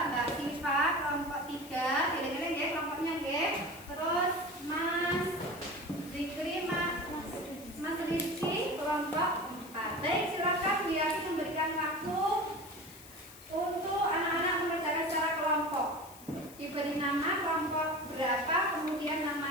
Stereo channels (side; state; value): left; noise; hiss, 19 dB below the sound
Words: Siva kelompok 3, kira-kira ya kelompoknya ya. Terus Mas Zikri, Mas Rizky kelompok 4. Baik, silakan Bu Yati memberikan waktu untuk anak-anak mengerjakan secara kelompok. Diberi nama kelompok berapa, kemudian